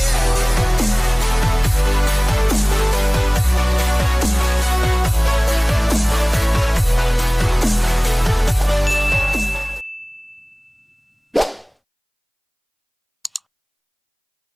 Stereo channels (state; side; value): identical; both; correlation 1.00